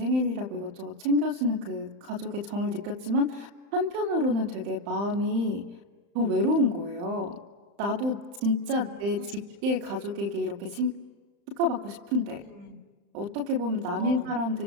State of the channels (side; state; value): left; late; 35 ms